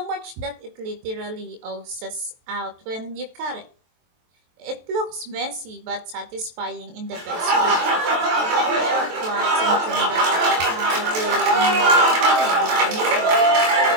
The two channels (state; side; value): late; left; 23 ms